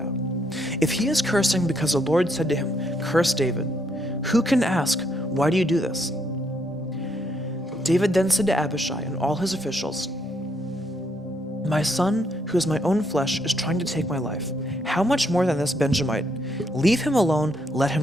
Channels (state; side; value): normal; both; correlation 0.73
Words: If he is cursing because the Lord said to him, 'Curse David,' who can ask, 'Why do you do this?'" David then said to Abishai and all his officials, "My son, who is my own flesh, is trying to take my life. How much more than this Benjamite? Leave him alone, let